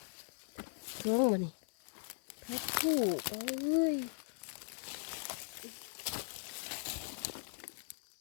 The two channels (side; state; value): right; silent; 52 dB below the other